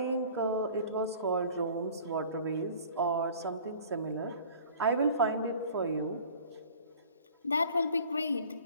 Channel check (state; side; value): inverted; both; correlation -0.47